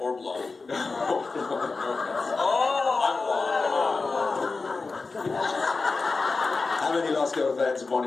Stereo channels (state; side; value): quieter; right; 4.0 dB